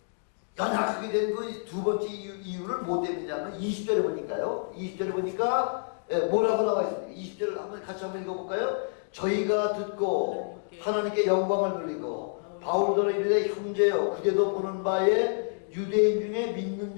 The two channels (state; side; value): silent; right; digital silence